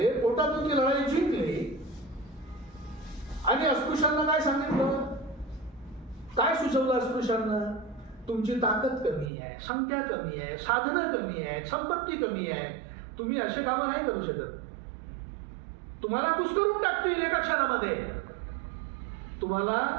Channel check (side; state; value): left; drops out; at 9.3 s